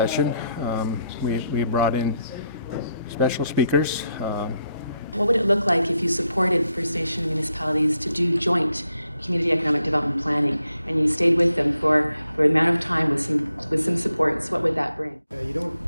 We brought in special speakers. What would it look like if you supported First Nation municipalities to do joint community economic development planning, and you stayed with them for an amount of time with some supports? What would that bring?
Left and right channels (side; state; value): both; inverted; correlation -0.79